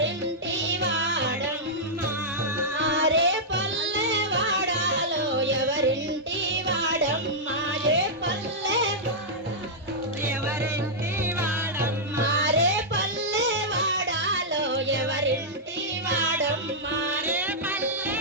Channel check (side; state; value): both; normal; correlation -0.09